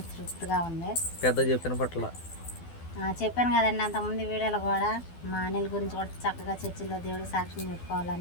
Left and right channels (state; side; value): late; right; 12 ms